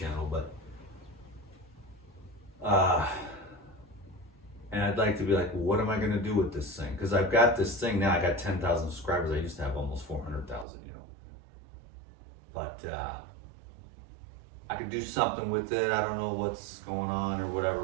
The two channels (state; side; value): drops out; left; at 10.7 s